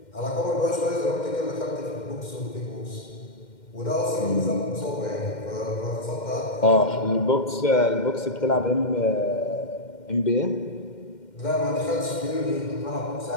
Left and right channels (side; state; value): right; late; 2.1 ms